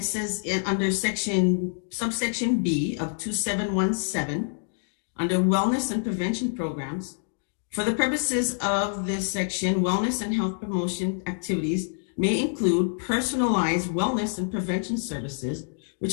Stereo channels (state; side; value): silent; right; digital silence